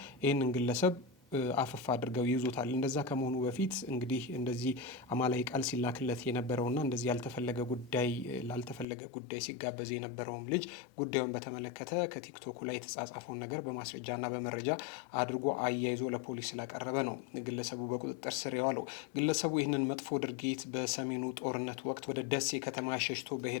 ይህንን ግለሰብ አፈፍ አድርገው ይይዙታል። እንደዛ ከመሆኑ በፊት እንግዲህ እንደዚህ አማላይ ቃል ሲላክለት የነበረውና እንደዚህ ላልተፈለገ ጉዳይ ሲጋበዝ የነበረውም ልጅ ጉዳዩን በተመለከተ ከቲክቶኩ ላይ የተጻጻፈውን ነገር በማስረጃና በመረጃ አድርጎ አያይዞ ለፖሊስ ስላቀረበ ነው ግለሰቡ በቁጥጥር ስር የዋለው። ግለሰቡ ይህንን መጥፎ ድርጊት በሰሜኑ ጦርነት ወቅት ወደ ደሴ ከተማ ሸሽቶ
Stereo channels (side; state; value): right; drops out; at 8.8 s